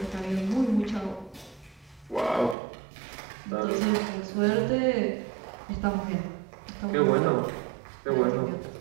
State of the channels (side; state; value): left; drops out; at 2.6 s